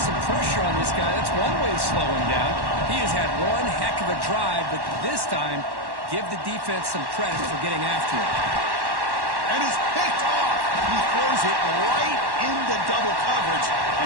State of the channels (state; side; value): late; left; 1.1 ms